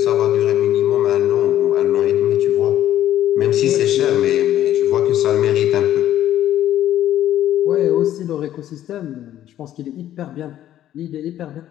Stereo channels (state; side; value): quieter; right; 12.2 dB